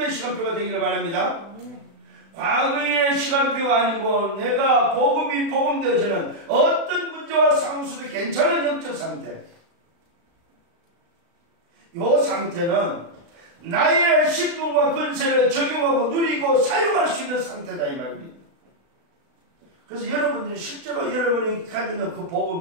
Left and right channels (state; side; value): late; left; 36 ms